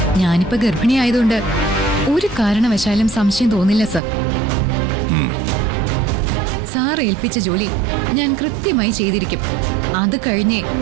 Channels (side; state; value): left; drops out; at 4.0 s